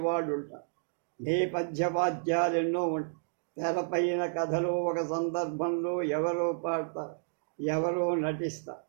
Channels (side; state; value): left; silent; digital silence